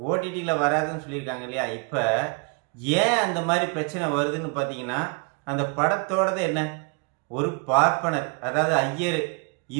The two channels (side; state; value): left; quieter; 34.0 dB